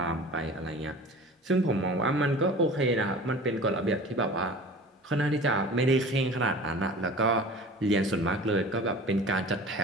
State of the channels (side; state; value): both; normal; correlation 0.40